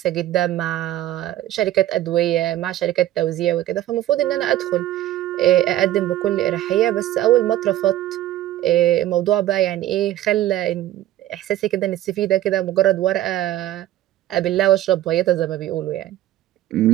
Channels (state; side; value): quieter; left; 13.7 dB